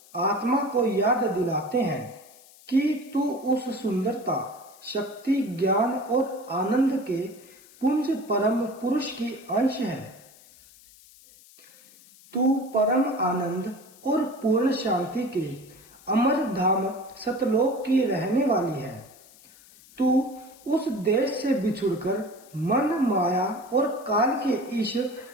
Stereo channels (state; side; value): noise; left; hiss, 24 dB below the sound